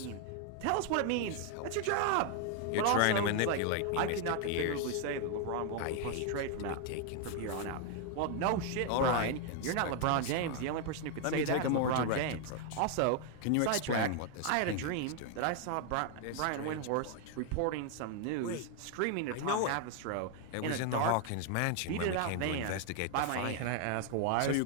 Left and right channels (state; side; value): different; both; correlation 0.00